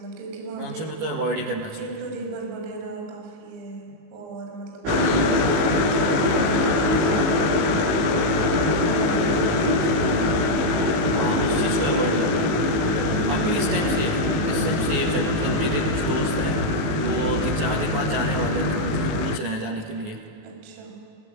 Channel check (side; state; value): left; late; 18 ms